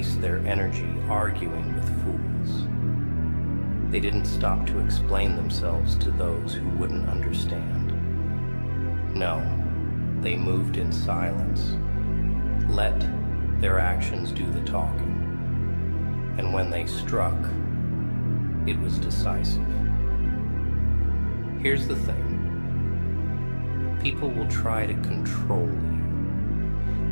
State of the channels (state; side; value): inverted; both; correlation -1.00